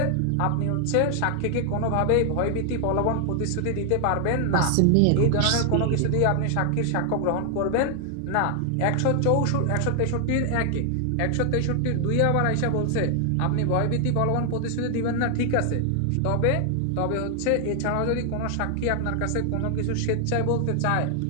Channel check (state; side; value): different; both; correlation 0.00